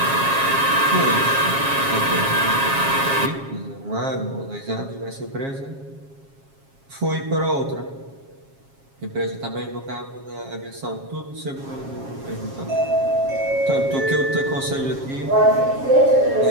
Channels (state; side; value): late; left; 7.4 ms